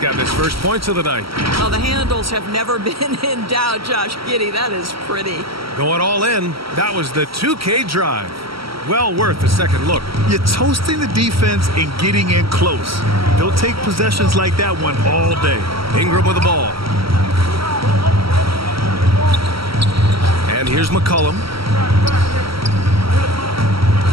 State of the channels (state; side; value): late; left; 0.75 ms